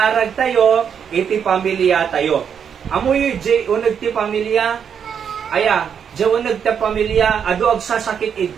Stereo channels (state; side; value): quieter; left; 7.6 dB